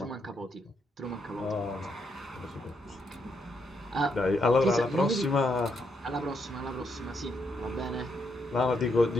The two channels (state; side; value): normal; both; correlation 0.78